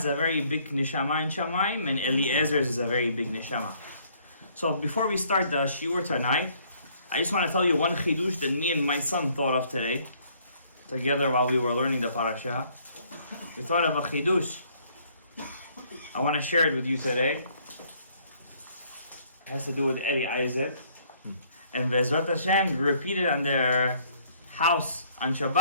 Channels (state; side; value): inverted; both; correlation -0.63